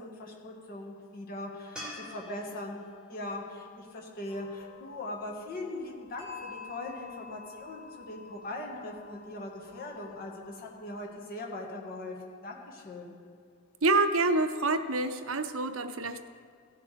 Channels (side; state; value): both; normal; correlation 0.03